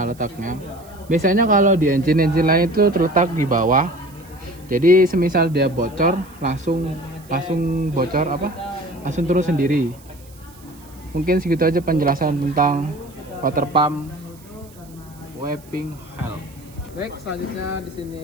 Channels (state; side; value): noise; right; hiss, 25 dB below the sound